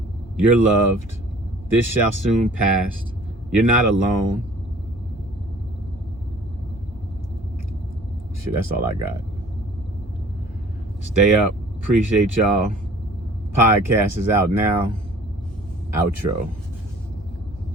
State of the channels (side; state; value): both; normal; correlation 0.51